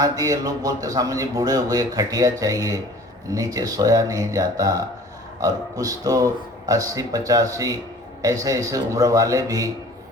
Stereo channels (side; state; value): both; normal; correlation 0.48